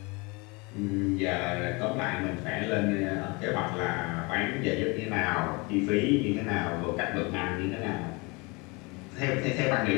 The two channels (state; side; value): quieter; right; 27.4 dB